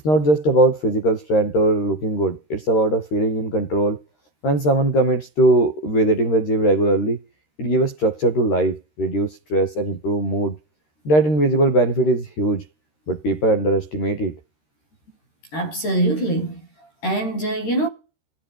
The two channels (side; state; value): right; late; 13 ms